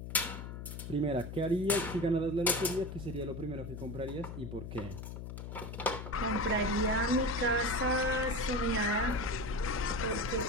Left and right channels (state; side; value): noise; left; hum, 8 dB below the sound